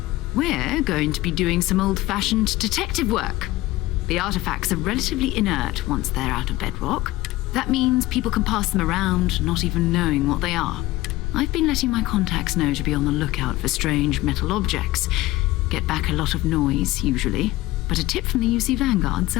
We're going to be doing some old-fashioned detective work. The artifacts are relatively inert once they're out of bedrock. That means people can pass them around, not even knowing what they are. I've been letting my contacts know to be on the lookout for strange metal objects. Get back a lot of noise, usually, but a tip from the UC Vanguard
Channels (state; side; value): quieter; right; 17.9 dB